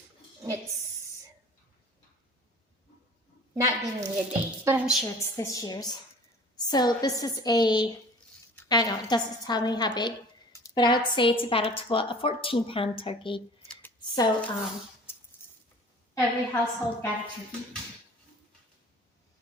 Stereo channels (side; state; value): both; normal; correlation 0.46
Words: It's not giving me a date, but I'm sure it's this year's. So this is I don't know, it doesn't tell me how big, but I would say it's about a 14-pound turkey. So every household got a turkey.